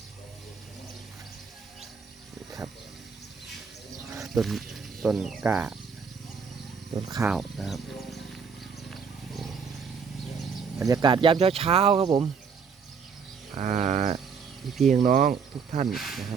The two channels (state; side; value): quieter; left; 6.0 dB